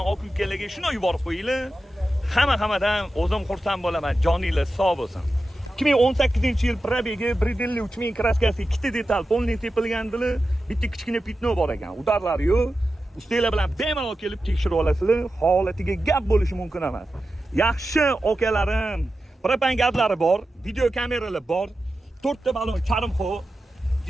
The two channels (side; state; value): both; normal; correlation 0.92